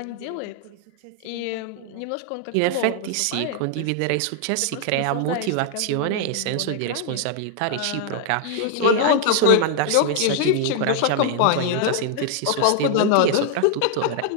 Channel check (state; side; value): different; both; correlation 0.00